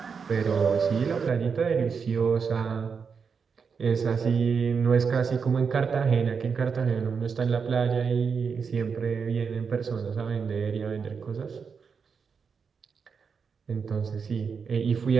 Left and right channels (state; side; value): quieter; left; 5.9 dB